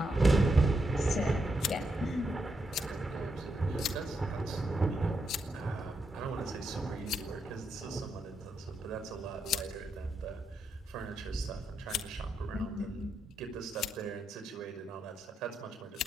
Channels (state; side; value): normal; both; correlation 0.82